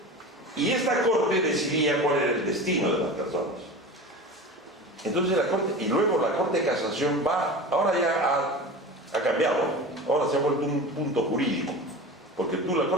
y esta Corte decidía cuál era el destino de las personas. Entonces la Corte, y luego la Corte de Casación va, ahora ya ha cambiado, ahora se ha vuelto un punto jurídico, porque la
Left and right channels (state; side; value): normal; both; correlation 0.32